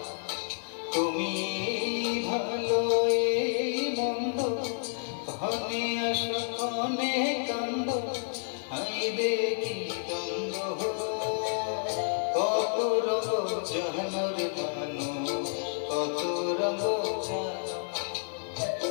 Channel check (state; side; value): silent; right; digital silence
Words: তুমি ভালো এই মন্দ, ক্ষণে আসো ক্ষণে কান্দ, হাইরে কি দ্বন্দ্ব। কত রঙ জাহানোর মানুষ কত রঙ জানো,